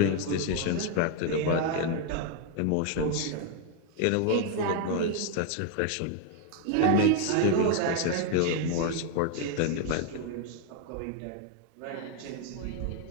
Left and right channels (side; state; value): both; different; correlation 0.00